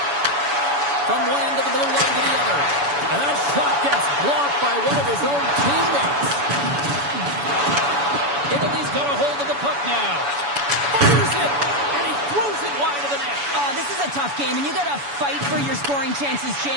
From one end of the blue line to the other. And that shot gets blocked by one of his own teammates. Italy's got a hold of the puck now. Fires it, and he throws it wide of the net. Oh, this is a tough game, and you got to fight for your scoring chances,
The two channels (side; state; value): left; late; 7.0 ms